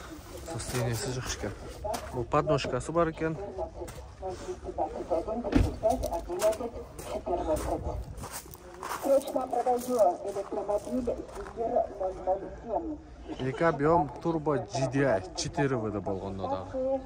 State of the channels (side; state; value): both; identical; correlation 1.00